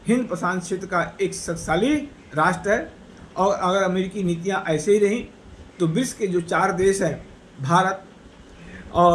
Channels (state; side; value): identical; both; correlation 1.00